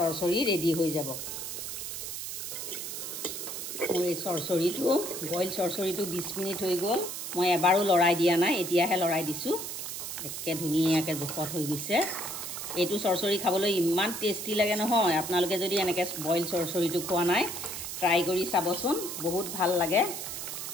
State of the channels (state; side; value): noise; right; hiss, 6 dB below the sound